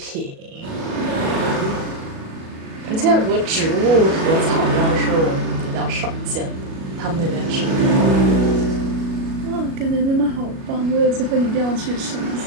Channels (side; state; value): left; late; 37 ms